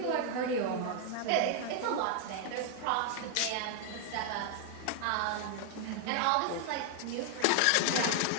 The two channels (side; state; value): both; different; correlation 0.00